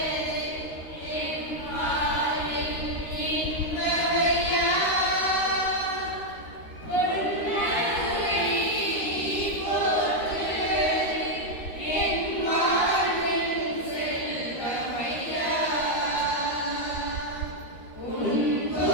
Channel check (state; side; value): late; right; 13 ms